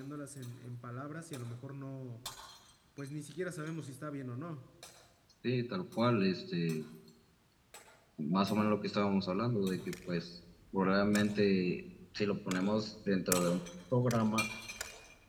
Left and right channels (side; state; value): both; identical; correlation 1.00